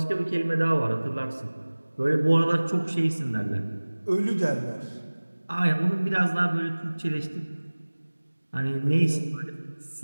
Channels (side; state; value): both; inverted; correlation -1.00